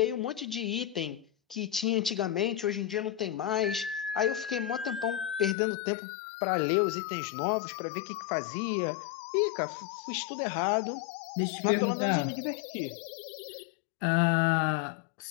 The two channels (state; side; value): drops out; right; at 5.6 s